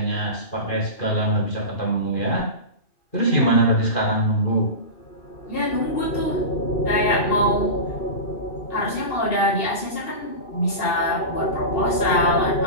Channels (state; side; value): late; right; 2.7 ms